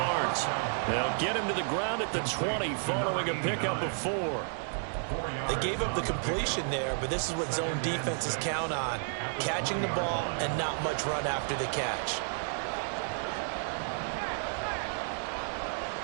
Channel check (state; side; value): silent; left; digital silence